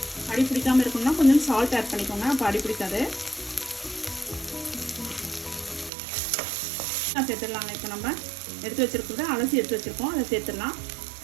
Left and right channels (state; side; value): drops out; left; at 5.9 s